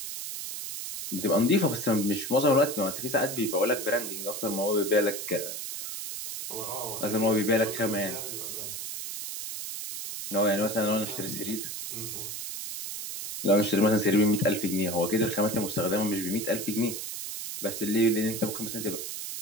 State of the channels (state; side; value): noise; right; hiss, 6 dB below the sound